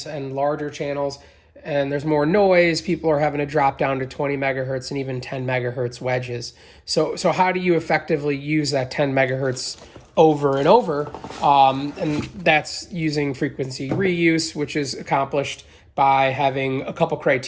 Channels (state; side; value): identical; both; correlation 1.00